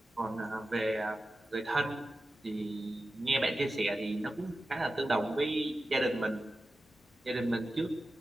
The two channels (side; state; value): both; normal; correlation 0.93